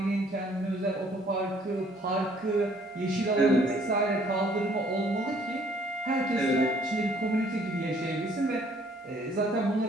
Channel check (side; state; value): both; normal; correlation 0.61